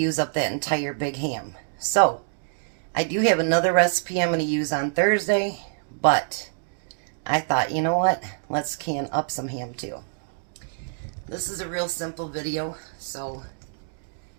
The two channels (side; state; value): left; silent; 61 dB below the other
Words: up that entire big ham. So, I do have another recipe I'm going to use on Thursday, but I thought, you know what, let's can up some ham too. This is a real simple video, so